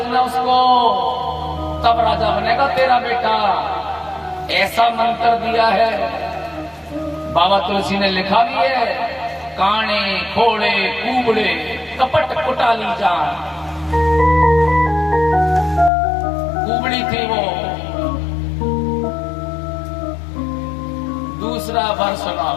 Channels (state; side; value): drops out; right; at 15.9 s